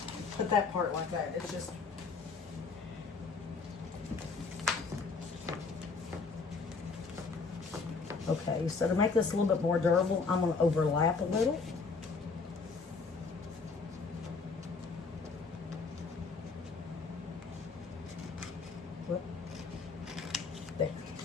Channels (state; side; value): quieter; right; 4.5 dB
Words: put that part like that. It's just... Okay, so to make this a little bit more durable, I'm going to overlap a little. Whoop. There.